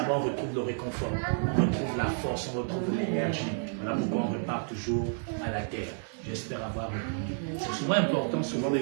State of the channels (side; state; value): left; silent; 58 dB below the other